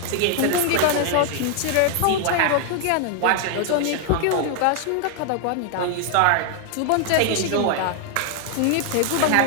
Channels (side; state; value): both; different; correlation 0.00